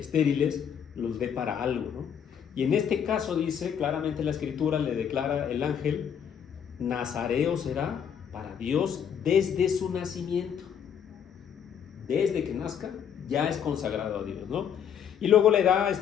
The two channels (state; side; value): quieter; right; 8.2 dB